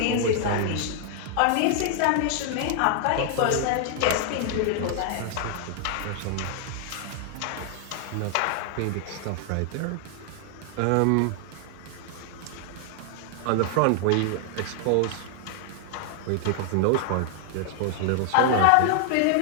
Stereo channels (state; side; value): different; both; correlation 0.00